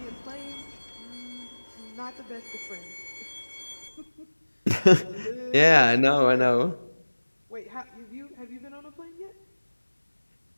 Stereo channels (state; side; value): inverted; both; correlation -1.00